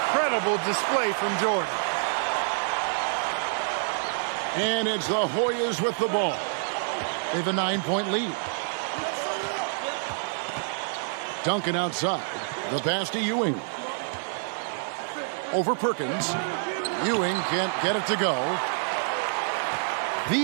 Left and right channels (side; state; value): left; silent; digital silence